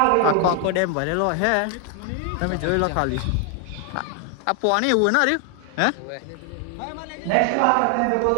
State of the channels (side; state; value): both; different; correlation 0.00